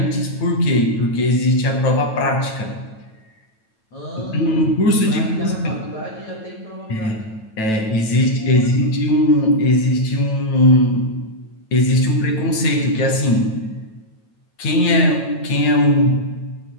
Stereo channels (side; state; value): right; late; 9.1 ms